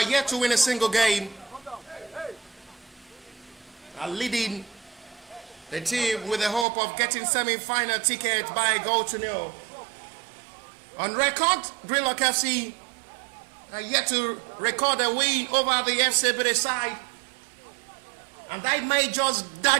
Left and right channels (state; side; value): drops out; left; at 6.7 s